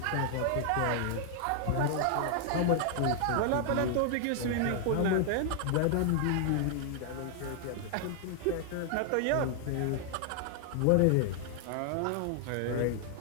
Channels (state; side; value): different; both; correlation 0.00